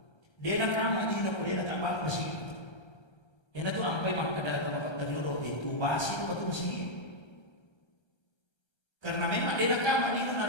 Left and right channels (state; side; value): late; right; 1.3 ms